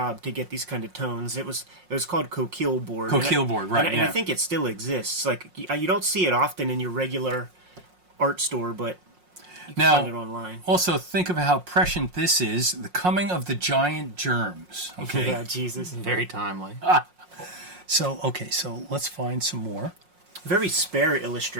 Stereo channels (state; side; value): late; left; 5.6 ms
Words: to get these kind of tones. It was called coquille board. Coquille board, right? And I think it still exists. Like you don't see it often in your regular art store, but you can find it online. Also, think of how prescient this is. The coming of the giant germs. Okay. Yeah, Jesus. Very timely. So let's find some more. Very spare